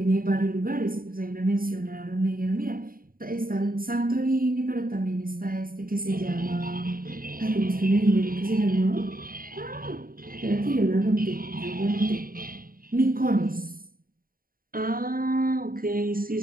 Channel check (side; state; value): left; late; 0.42 ms